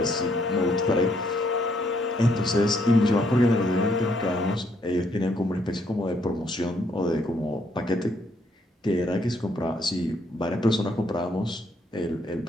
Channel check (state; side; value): normal; both; correlation 0.71